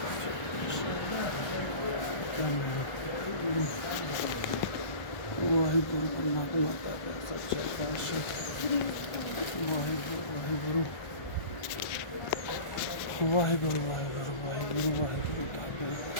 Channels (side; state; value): right; late; 1.3 ms